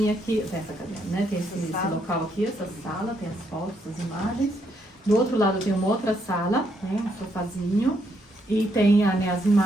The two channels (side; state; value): both; normal; correlation 0.75